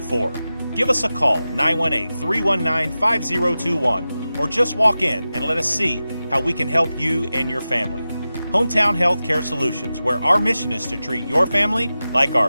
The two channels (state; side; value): inverted; both; correlation -0.94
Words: Give us a call, 918-319-5021, or just walk in and let us see how we can help you and your family. Hometown Health Care Solutions, where our mission is to treat your family like our